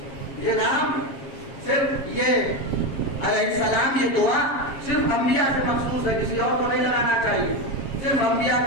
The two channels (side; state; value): right; late; 7.4 ms